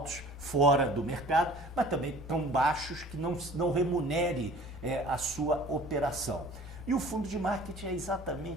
fora do mercado, mas também tão baixos que não remunere a sua operação. E o fundo de marketing é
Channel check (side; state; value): both; normal; correlation 0.47